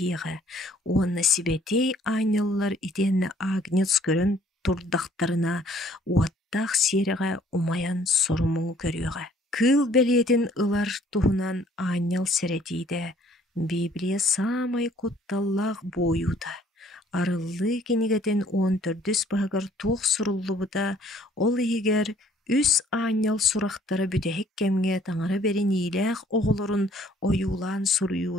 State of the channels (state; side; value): normal; both; correlation 0.59